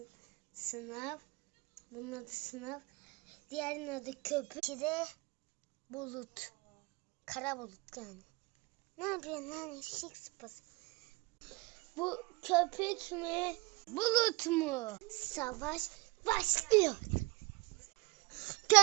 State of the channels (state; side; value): quieter; left; 24.3 dB